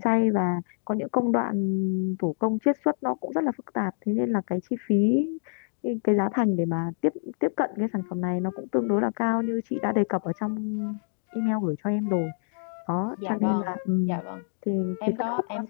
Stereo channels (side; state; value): right; silent; digital silence